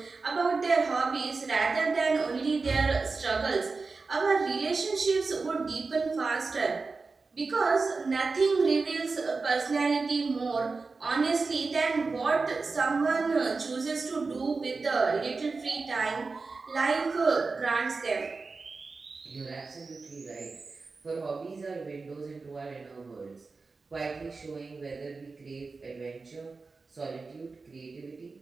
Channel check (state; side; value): quieter; left; 4.1 dB